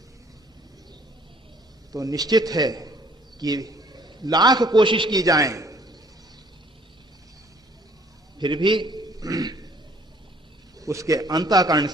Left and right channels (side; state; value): both; normal; correlation 0.59